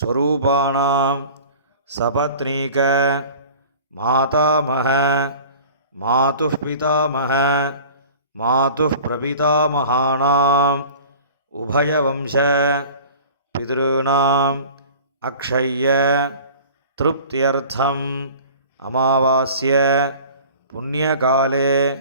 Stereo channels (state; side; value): inverted; both; correlation -0.43